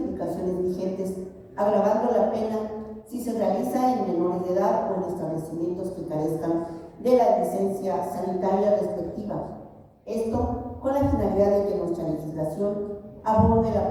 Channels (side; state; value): both; identical; correlation 1.00